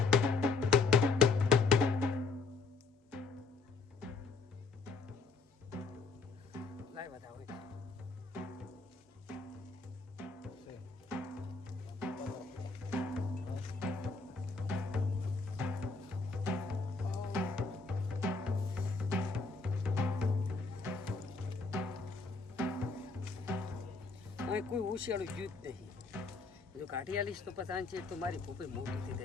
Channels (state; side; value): quieter; right; 4.1 dB